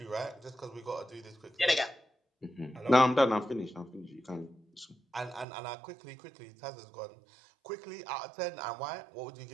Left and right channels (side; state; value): left; drops out; at 5.5 s